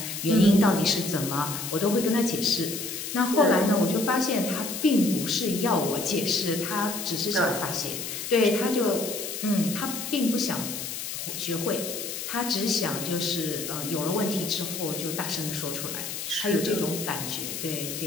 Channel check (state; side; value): noise; left; hiss, 6 dB below the sound